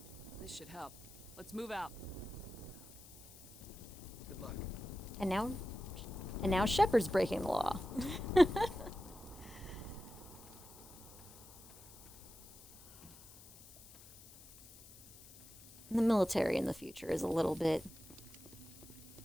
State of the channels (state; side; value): noise; left; hiss, 19 dB below the sound